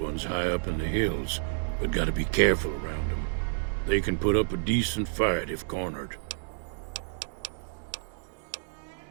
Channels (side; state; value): left; silent; digital silence